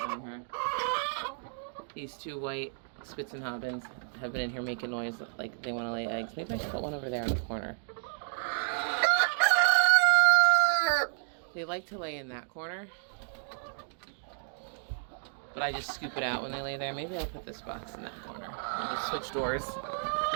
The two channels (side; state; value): left; silent; digital silence